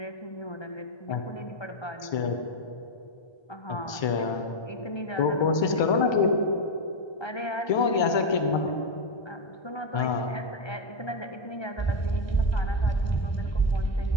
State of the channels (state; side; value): late; right; 1.3 ms